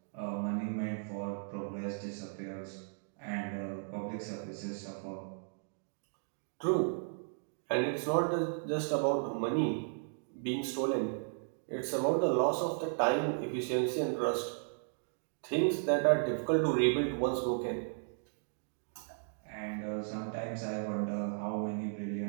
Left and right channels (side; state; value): left; silent; digital silence